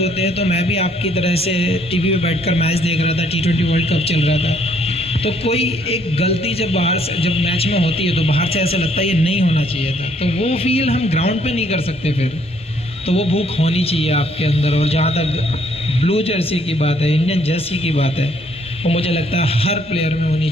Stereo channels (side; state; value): both; normal; correlation 0.66